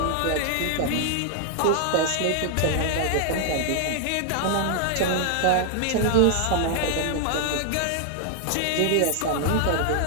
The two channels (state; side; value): different; both; correlation 0.00